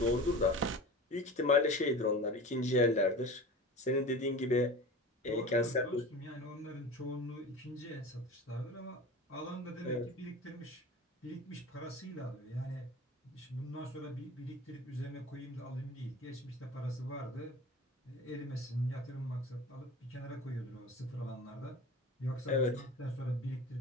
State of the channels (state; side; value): normal; both; correlation 0.34